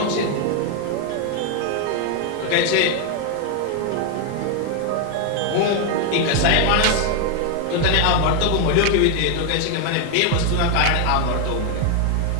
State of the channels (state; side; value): different; both; correlation 0.01